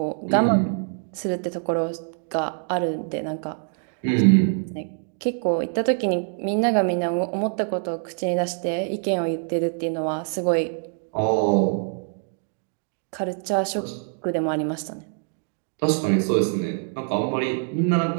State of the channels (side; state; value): left; silent; 55 dB below the other